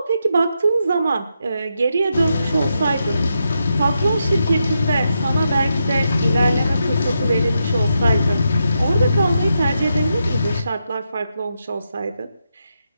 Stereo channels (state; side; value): inverted; both; correlation -0.84